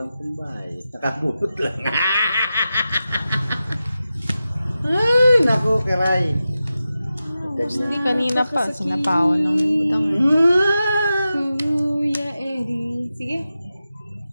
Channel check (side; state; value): both; inverted; correlation -0.92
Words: pambahay. Nakabulot lang. Ay, naku, Kiray. Boss D, kanina pa. Sinapawan ng Budang. Kuya Eddie. Sige.